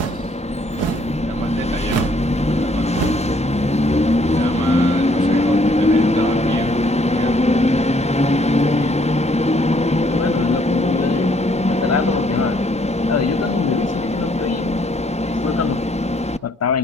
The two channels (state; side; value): normal; both; correlation 0.66